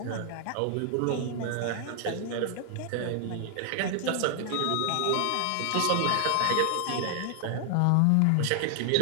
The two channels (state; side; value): different; both; correlation -0.01